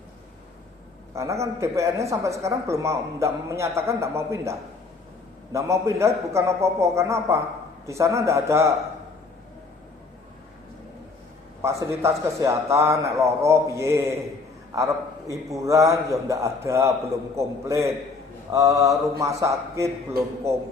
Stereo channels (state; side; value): quieter; right; 4.1 dB